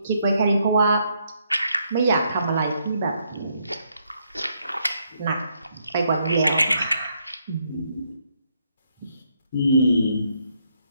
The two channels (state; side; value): inverted; both; correlation -0.74